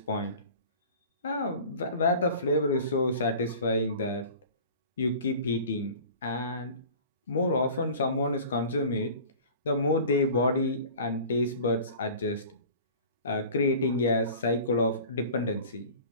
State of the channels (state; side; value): inverted; both; correlation -0.42